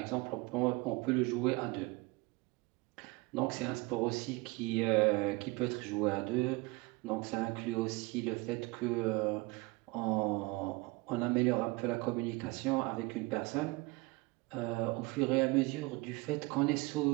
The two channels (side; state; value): left; quieter; 24.0 dB